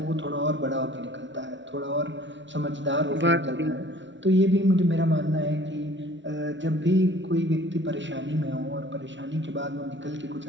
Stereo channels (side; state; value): left; late; 0.54 ms